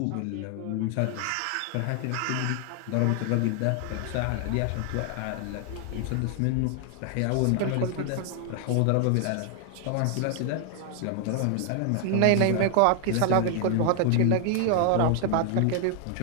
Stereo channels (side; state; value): both; different; correlation 0.00